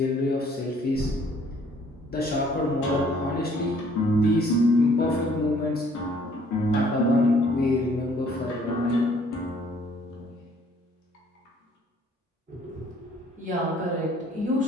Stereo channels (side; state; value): both; normal; correlation 0.60